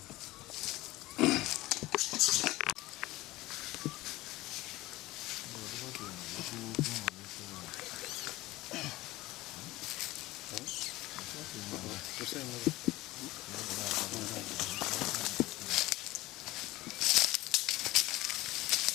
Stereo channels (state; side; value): quieter; right; 18.6 dB